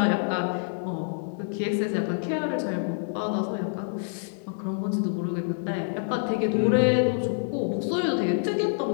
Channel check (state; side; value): silent; right; digital silence